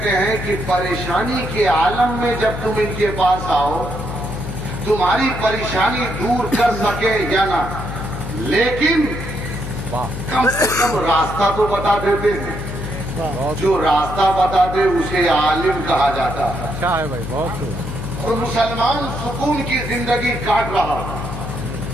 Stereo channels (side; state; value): left; noise; hum, 7 dB below the sound